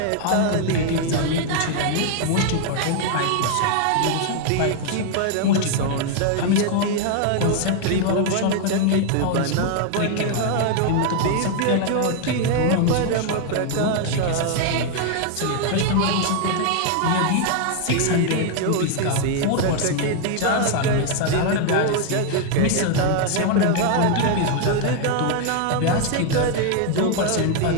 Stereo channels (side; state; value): both; different; correlation 0.00